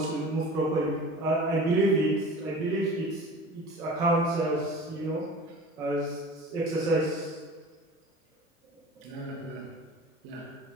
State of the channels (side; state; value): both; normal; correlation 0.39